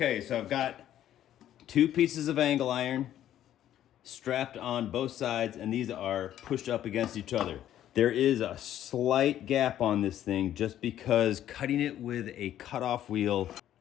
so I've got 2 pieces of angle iron strapped on both sides, and these are pushed up against each other. There is a slight gap on this thing just because cutting it with a cutoff wheel,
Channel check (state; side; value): quieter; right; 11.7 dB